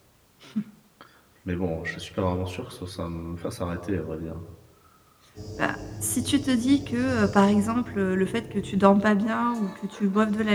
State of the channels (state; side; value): identical; both; correlation 1.00